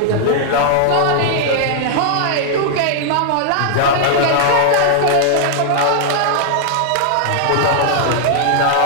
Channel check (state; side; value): different; both; correlation -0.01